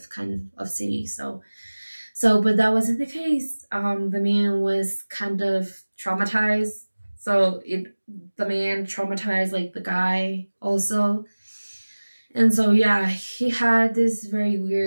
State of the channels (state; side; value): inverted; both; correlation -1.00